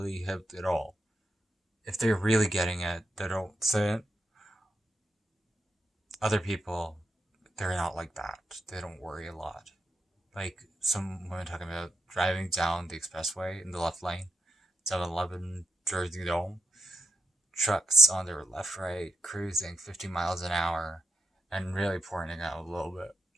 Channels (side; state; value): both; normal; correlation 0.86